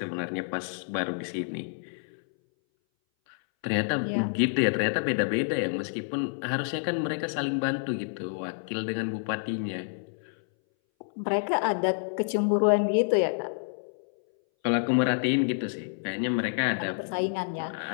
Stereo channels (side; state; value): right; silent; 59 dB below the other